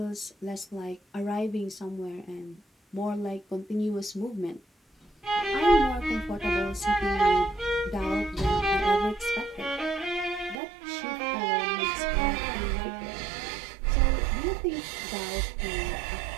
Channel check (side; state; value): left; drops out; at 10.6 s